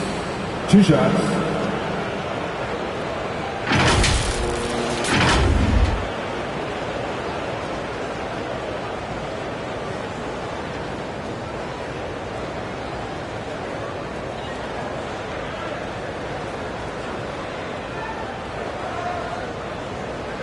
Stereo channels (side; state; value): both; identical; correlation 1.00